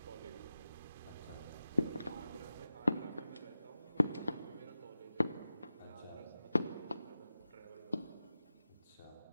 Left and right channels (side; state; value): both; inverted; correlation -0.93